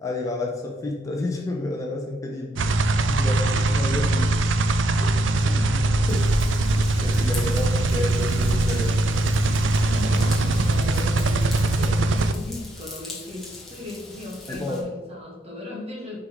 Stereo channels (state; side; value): normal; both; correlation 0.78